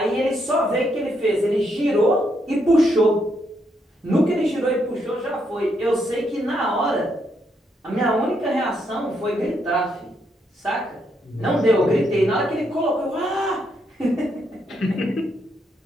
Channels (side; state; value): both; normal; correlation 0.77